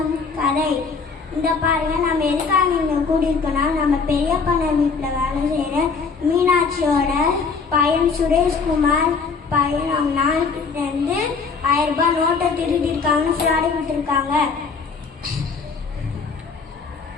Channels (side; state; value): right; quieter; 5.0 dB